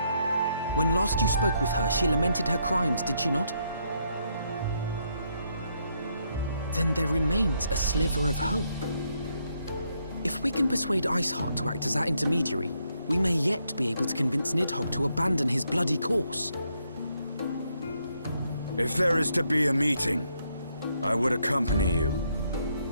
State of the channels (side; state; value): both; inverted; correlation -0.76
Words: When last you spoke with her, she lamented her crimes, did she not? Then there remains a sliver of hope. If we can persuade Iceheart to act as our intermediary, we may yet be able to convince Nidhogg to abandon his bloody course. If there is to be a meeting, I would accompany you.